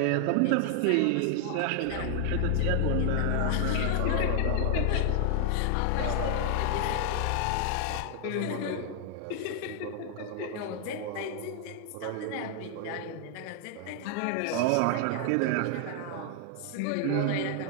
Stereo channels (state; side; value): different; both; correlation 0.00